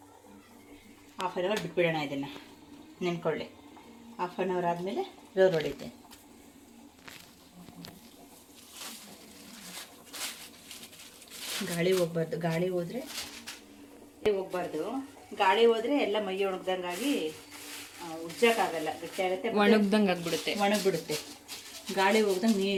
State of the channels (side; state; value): both; identical; correlation 1.00